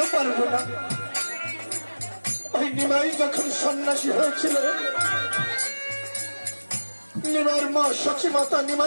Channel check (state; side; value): inverted; both; correlation -1.00